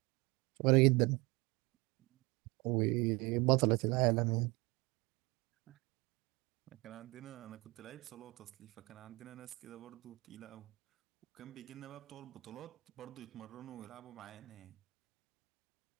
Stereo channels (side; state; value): left; quieter; 24.4 dB